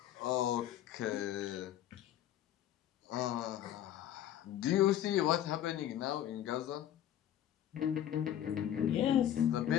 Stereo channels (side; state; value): right; quieter; 11.2 dB